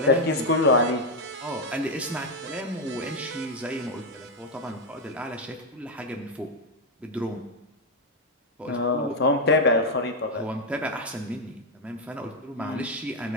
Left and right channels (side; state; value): both; normal; correlation 0.03